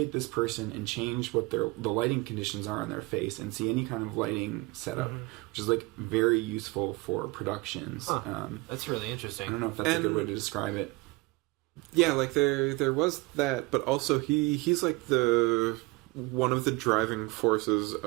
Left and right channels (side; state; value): left; quieter; 23.6 dB